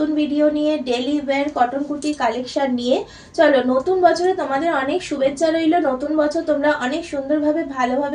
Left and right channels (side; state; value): both; identical; correlation 1.00